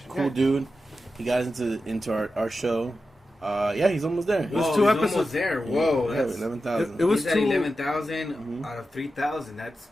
Cool dude. He got into our show. Yeah, he's almost there. It was Whoa, two he's episodes. almost there. Whoa, Yeah, that's 11,000. It was he's at two- 11,000 Mhm. out of 3,000. That's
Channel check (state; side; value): normal; both; correlation 0.91